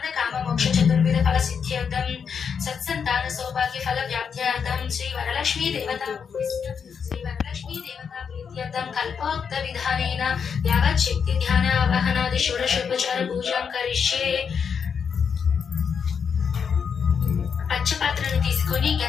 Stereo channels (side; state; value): right; quieter; 6.6 dB